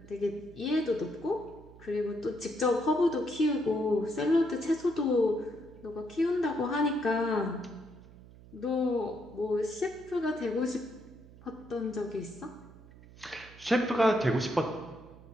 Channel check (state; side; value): noise; right; hum, 20 dB below the sound